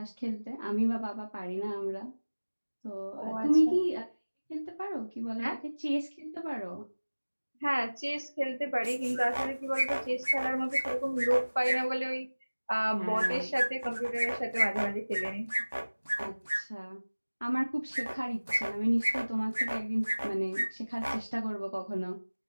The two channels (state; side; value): inverted; both; correlation -1.00